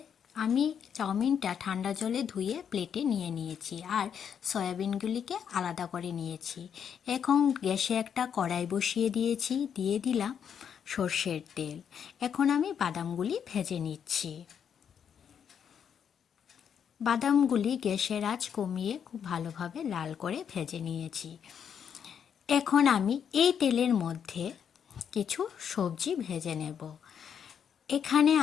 আমি চাউমিনটা ঠান্ডা জলে ধুয়ে প্লেটে নিয়ে নিয়েছি আর সয়াবিনগুলিকে আলাদা করে নিয়েছি। এখন গ্যাসে একটা কড়াই বসিয়ে দিয়েছি, দিয়ে দিলাম সর্ষের তেল। এখন আমি বাদামগুলি ভেজে নিচ্ছি। বাদামগুলি গ্যাসের আঁচ কমিয়ে খুব ভালোভাবে লাল করে ভেজে নিয়েছি। এখন আমি এই তেলের মধ্যে কিছু সবজি ভেজে নেব। এখানে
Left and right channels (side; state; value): right; quieter; 7.9 dB